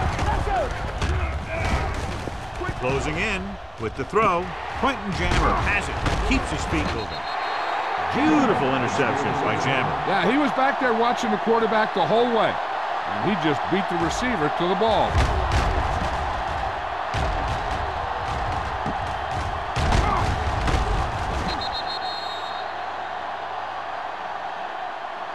Let's go. Closing in with the throw. Quentin Jammer has it. Keeps his feet moving. Beautiful interception by Jammer. Yeah, he was back there watching the quarterback the whole way, and he just beat the receiver to the ball.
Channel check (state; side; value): identical; both; correlation 1.00